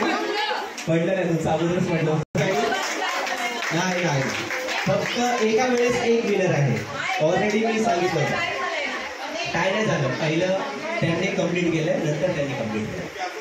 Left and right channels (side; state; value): both; identical; correlation 1.00